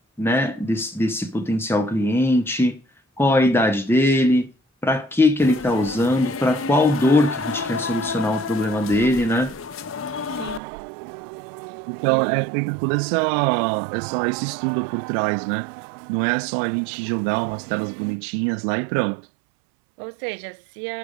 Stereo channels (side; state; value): left; drops out; at 10.6 s